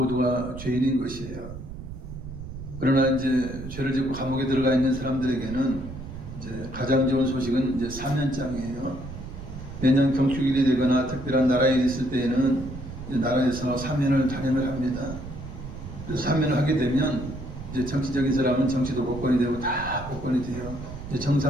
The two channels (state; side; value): noise; right; rumble, 11 dB below the sound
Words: 죄인인 것이에요. 그러나 이제 죄를 짓고 감옥에 들어가 있는 사람들에게는 이제 가장 좋은 소식은 이제 사면장이에요. 매년 경축일이 되거나 특별한 나라에 있을 때에는 나라에서 사면을 단행을 합니다. 그래서 사면을 하게 되면 이제 정치적인 사람은 정치도 복권이 되고 다 복권이 돼요. 이제